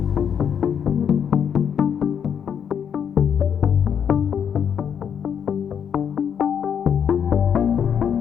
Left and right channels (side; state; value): right; quieter; 8.0 dB